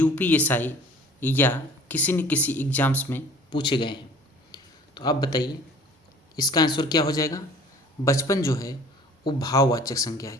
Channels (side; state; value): both; normal; correlation 0.50